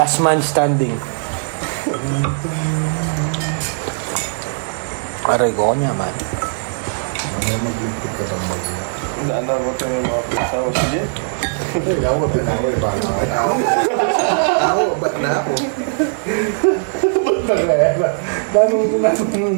man standing. Aray ko niya man. Ano magligpit ka ng mag-iya? Hindi, ano mo tayo yung mga pagkasawa. Sige. Ay, ako, tinaway ba na? Ako, ba't na ako? Ba't na kaya? Nanong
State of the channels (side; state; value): left; silent; digital silence